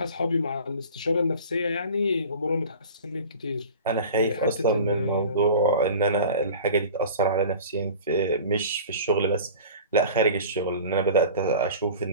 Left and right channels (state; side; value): inverted; both; correlation -0.39